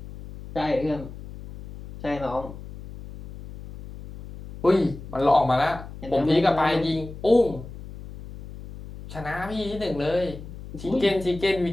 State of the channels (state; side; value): noise; left; hum, 13 dB below the sound